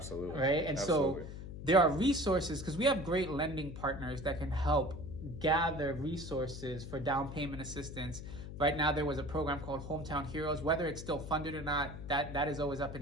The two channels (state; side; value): noise; left; hum, 10 dB below the sound